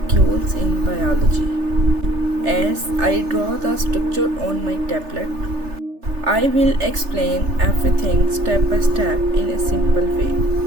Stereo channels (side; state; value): left; late; 3.3 ms